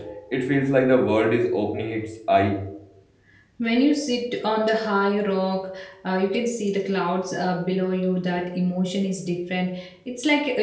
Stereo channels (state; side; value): identical; both; correlation 1.00